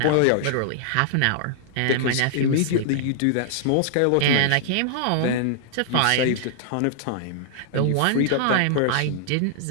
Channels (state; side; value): different; both; correlation -0.01